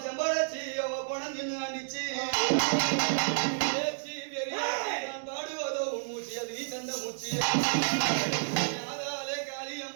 செம்படாச்சி அவ போன தின்னு ஆண்டிச்சு நான் பாடுவதோ உன் மூச்சு அது நீ தந்த மூச்சு யாதாலே காளி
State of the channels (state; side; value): silent; left; digital silence